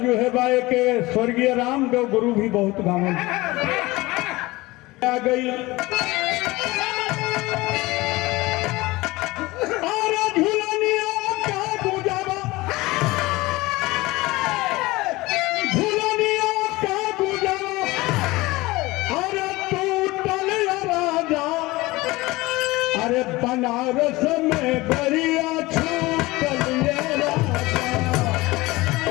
है बाए के स्वर्गीय रामदेव गुरु भी बहुत गावन आ गई। अरे बनारस में गरिया छू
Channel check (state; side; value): quieter; right; 20.7 dB